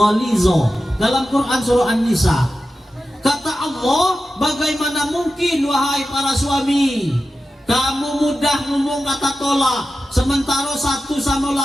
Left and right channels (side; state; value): both; normal; correlation 0.92